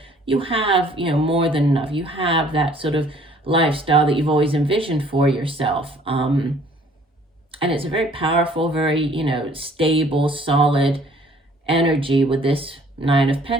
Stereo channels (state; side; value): normal; both; correlation 0.57